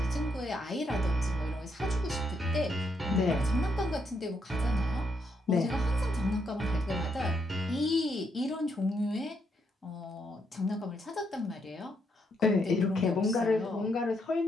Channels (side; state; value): both; normal; correlation 0.77